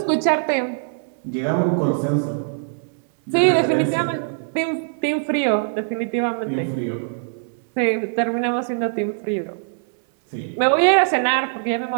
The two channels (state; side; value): silent; left; 64 dB below the other